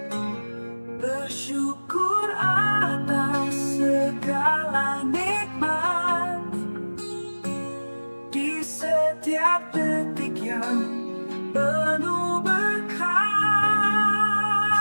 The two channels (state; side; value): inverted; both; correlation -1.00